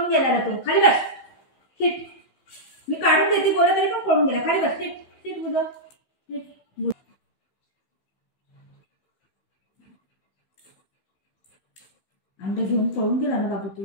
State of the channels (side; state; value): right; late; 16 ms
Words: गेला तो. खाली बस. सीट. मी काढून देते बोला तरी पण पळून गेला. खाली बस. सीट सीट बोला. अंडे घेऊन पळून गेला ना बाबू